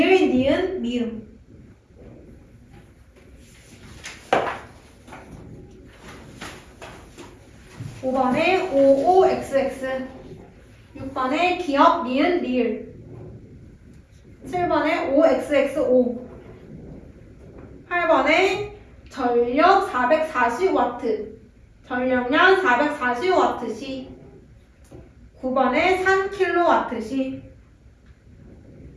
니은 미음 5번에 55xx 6번에 기억 니은 리을 7번에 5xx5 8번에 전력 440W 전력량 440W시 9번에 3kW시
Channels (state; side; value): identical; both; correlation 1.00